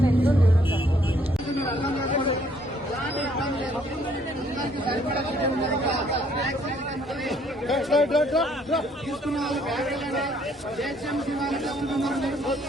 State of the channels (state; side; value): normal; both; correlation 0.65